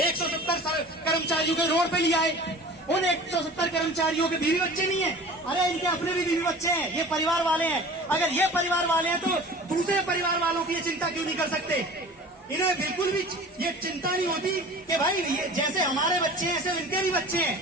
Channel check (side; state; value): both; normal; correlation 0.41